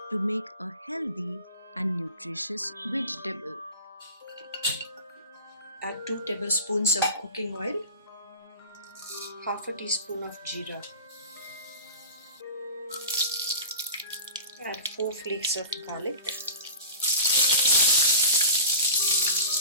to make a healthy and nutritious vegetable. Add 2 tablespoons of cooking oil, half a teaspoon of jeera. Add 4 flakes of garlic.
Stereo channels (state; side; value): inverted; both; correlation -0.32